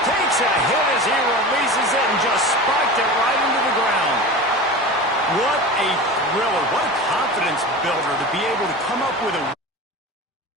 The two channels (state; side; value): normal; both; correlation 0.31